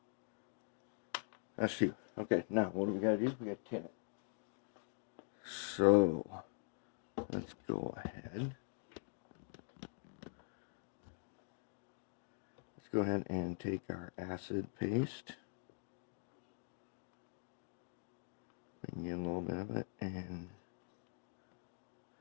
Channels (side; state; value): right; silent; digital silence